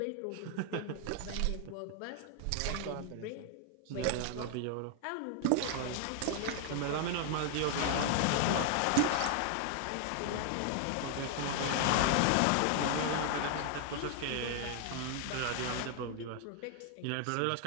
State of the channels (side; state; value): both; different; correlation 0.00